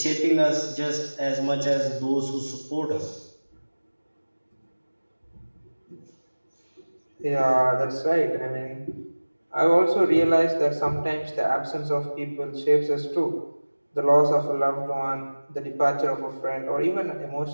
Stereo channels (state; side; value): inverted; both; correlation -1.00